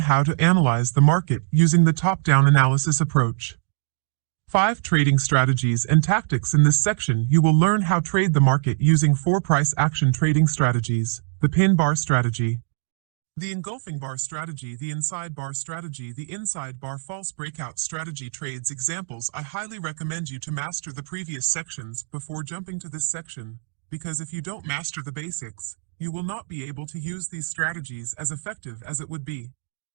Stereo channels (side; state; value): left; silent; digital silence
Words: to analyze the market using the top-down analysis approach. 5. Trading strategies and tactics. In this section, you will learn how to trade the market using 4 price action trading strategies: the pin bar strategy, the engulfing bar strategy, the inside bar strategy, the inside bar false breakout strategy. Trades examples. I highly recommend you to master the previous sections before jumping to this section, because if you don't master the basics, you will not be able to use these strategies as effective as it would be.